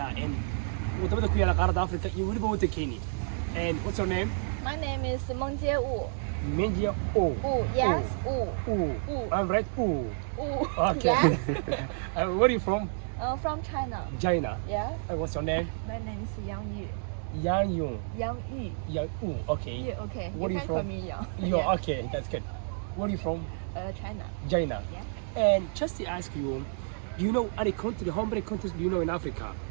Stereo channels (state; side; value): silent; left; digital silence